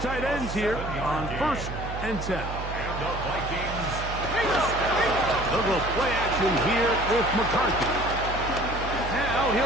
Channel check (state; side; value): noise; right; hum, 7 dB below the sound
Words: tight ends here on 1st and 10. And the Vikings. They'll go play action here with McCarthy.